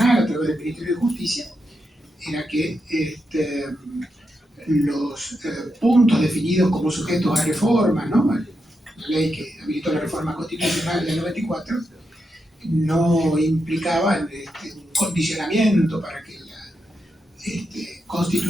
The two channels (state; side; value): normal; both; correlation 0.85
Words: a través del Ministerio de Justicia, era que los puntos definidos como sujetos a reforma, ¿no?, la ley que habilitó la reforma constitucional del 94, no implicaban un condicionamiento para que la